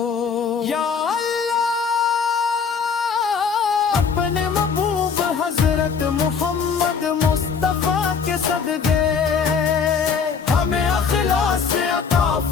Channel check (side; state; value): right; quieter; 6.1 dB